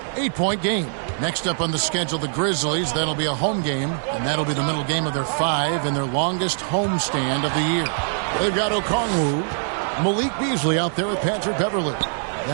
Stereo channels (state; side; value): silent; left; digital silence